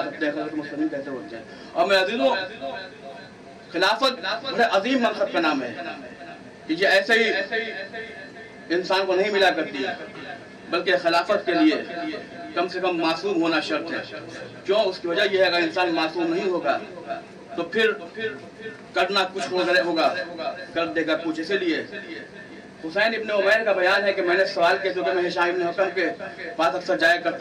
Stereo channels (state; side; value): identical; both; correlation 1.00